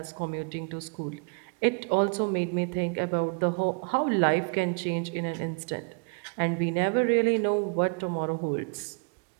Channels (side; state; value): left; quieter; 36.9 dB